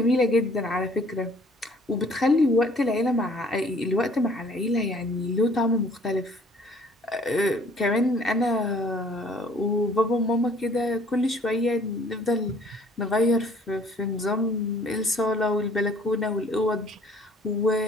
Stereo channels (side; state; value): both; normal; correlation 0.57